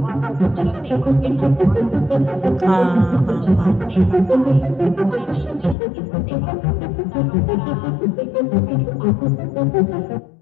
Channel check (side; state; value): right; drops out; at 5.8 s